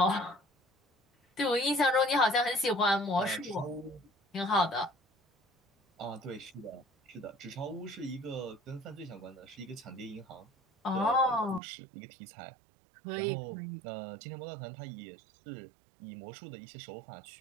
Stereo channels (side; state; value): left; drops out; at 11.6 s